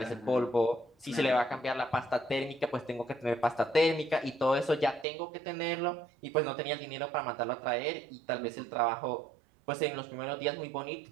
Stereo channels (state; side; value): drops out; left; at 5.1 s